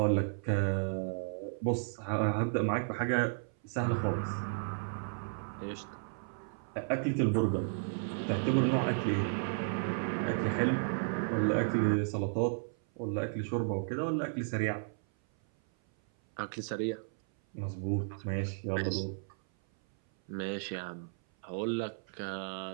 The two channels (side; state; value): left; silent; 55 dB below the other